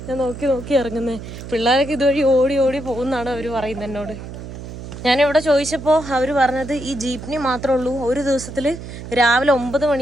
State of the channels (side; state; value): right; noise; hum, 11 dB below the sound